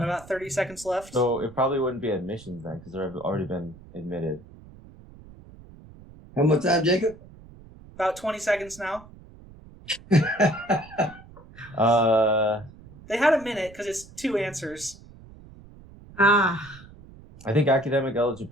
30 seconds left. So it probably wouldn't be admissions then, because they've already been admitted. How much time, Jacob? About 20 seconds now. They had a minute because it's 2 answers. Ah, I think academic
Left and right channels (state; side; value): noise; right; rumble, 20 dB below the sound